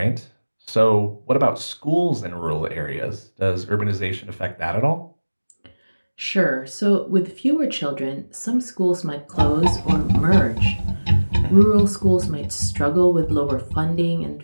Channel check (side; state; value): both; inverted; correlation -1.00